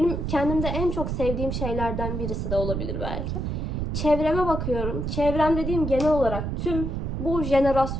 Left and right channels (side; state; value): right; noise; rumble, 2 dB below the sound